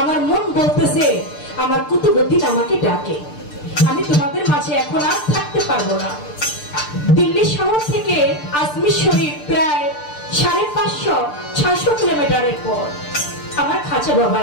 মন বলতেছে আমার কুতুবউদ্দিন আমাকে ডাকে, আমি তোমাদের মাঝে এখন আর থাকতে পারবো না। দিল্লি শহর থেকে আজমির শরীফ প্রায় 550-600 কিলোমিটারের পর আমার খাজা বাবা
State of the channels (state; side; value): late; right; 6.7 ms